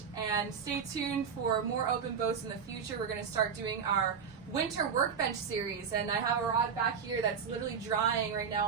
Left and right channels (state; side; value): quieter; left; 6.6 dB